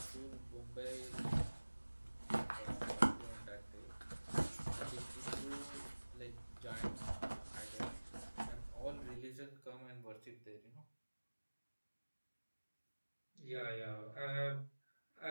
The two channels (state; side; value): inverted; both; correlation -1.00